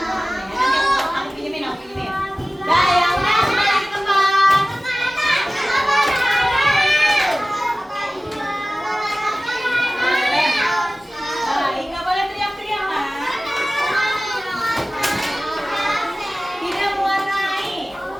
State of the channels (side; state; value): both; normal; correlation 0.97